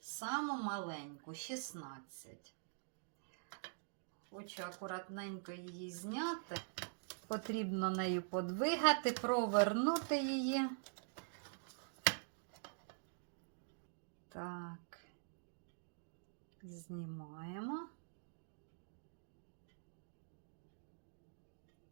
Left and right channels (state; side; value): silent; left; digital silence